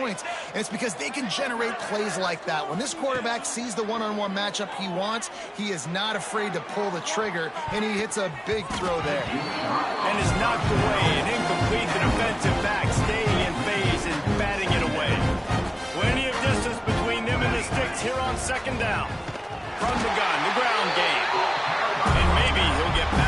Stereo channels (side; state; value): both; identical; correlation 1.00